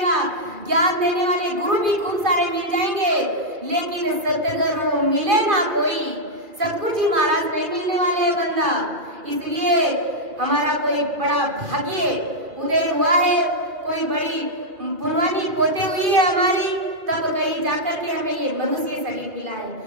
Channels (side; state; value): left; late; 2.3 ms